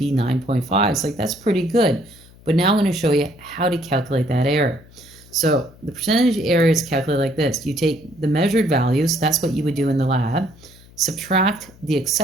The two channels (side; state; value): left; noise; hum, 24 dB below the sound